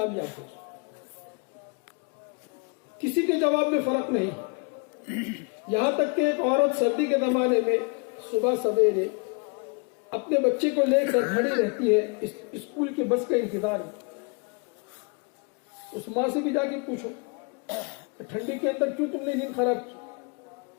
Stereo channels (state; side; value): quieter; right; 34.1 dB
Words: ہو۔ کسی کے جواب میں فرق نہیں، یہاں تک کہ ایک عورت سردی کے زمانے میں صبح سویرے اپنے بچے کو لے کر کھڑی رہتی ہے اسکول کے بس کا انتظار میں۔ اس ماں سے بھی جا کے پوچھو کہ ٹھنڈی کے اندر کیوں تم نے نیند خراب کی،